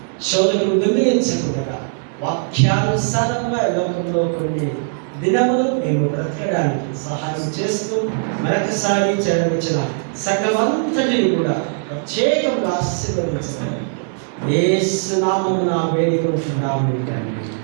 శోధకులు దొంగిలించకుండా వాక్యానుసారంగా లోకంలో కొన్ని దినములు మేము బ్రతకడానికి సహాయం చేస్తూ మరొకసారి చేరవచ్చిన సంఘమంతటిని కూడా ప్రత్యేకంగా ఆశీర్వదించడం యేసు నామమున వేడుకుంటున్నాము తండ్రి.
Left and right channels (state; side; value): silent; left; digital silence